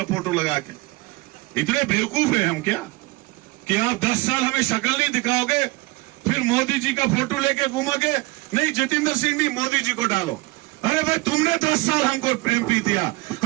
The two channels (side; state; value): left; quieter; 22.8 dB